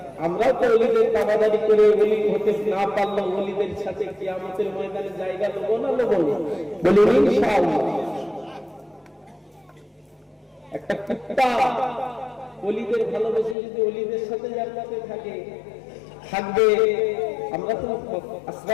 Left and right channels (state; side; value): drops out; right; at 13.6 s